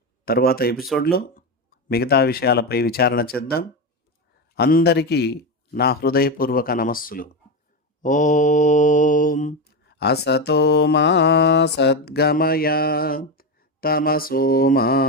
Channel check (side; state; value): both; normal; correlation 0.14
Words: తర్వాత ఎపిసోడ్లో మిగతా విషయాలపై విచారణ చేద్దాం. అందరికీ నా హృదయపూర్వక నమస్సులు. ఓం అసతో మా సద్గమయ, తమసో మా